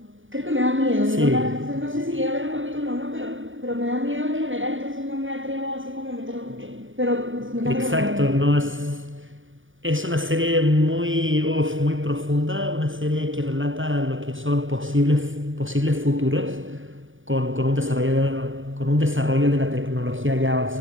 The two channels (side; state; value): left; late; 0.57 ms